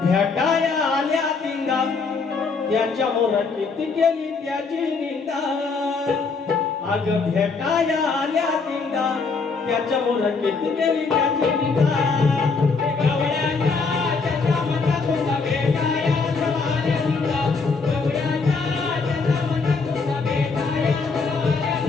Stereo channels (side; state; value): right; quieter; 4.5 dB